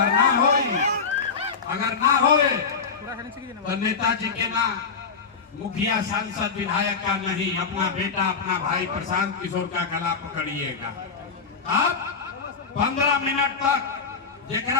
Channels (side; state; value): right; quieter; 5.2 dB